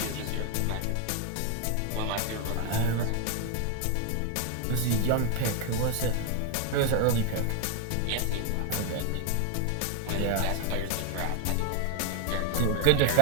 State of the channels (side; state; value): both; different; correlation 0.01